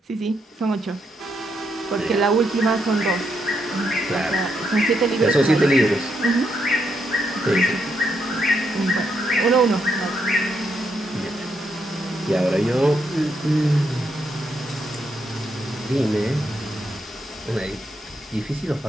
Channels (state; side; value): normal; both; correlation 0.79